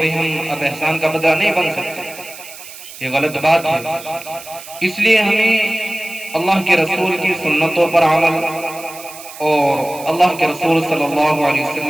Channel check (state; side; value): noise; right; hiss, 15 dB below the sound